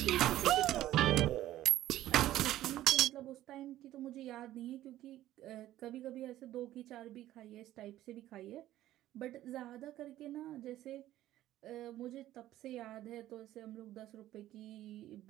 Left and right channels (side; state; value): left; quieter; 14.0 dB